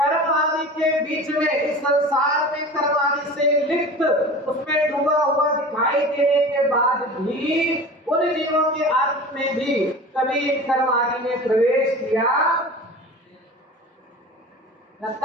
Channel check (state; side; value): normal; both; correlation 0.36